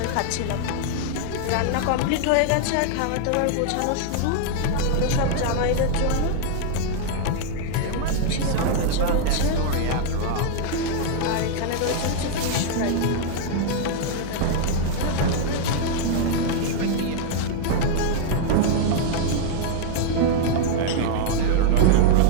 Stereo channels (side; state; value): both; different; correlation -0.01